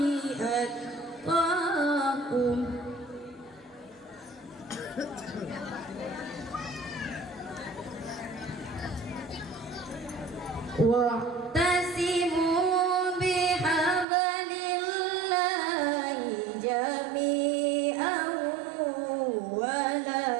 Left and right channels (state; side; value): drops out; left; at 14.1 s